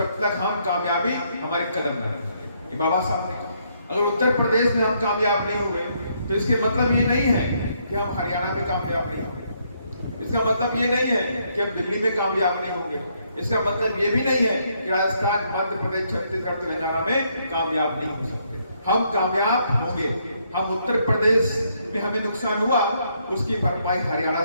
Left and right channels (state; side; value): inverted; both; correlation -0.73